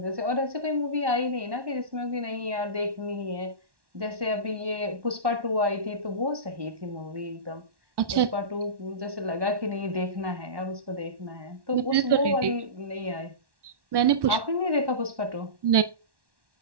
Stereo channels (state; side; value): late; left; 1.1 ms